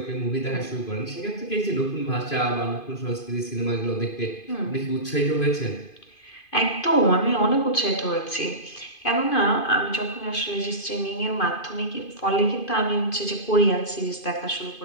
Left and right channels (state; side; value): late; right; 2.5 ms